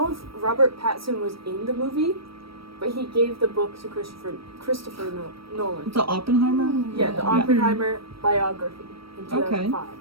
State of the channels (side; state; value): left; late; 0.75 ms